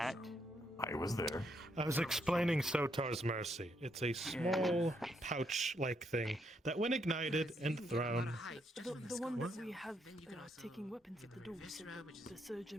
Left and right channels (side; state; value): both; normal; correlation 0.76